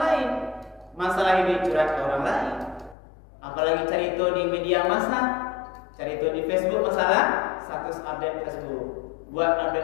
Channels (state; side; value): drops out; right; at 3.0 s